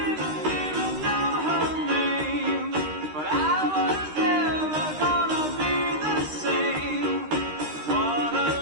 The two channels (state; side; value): late; left; 13 ms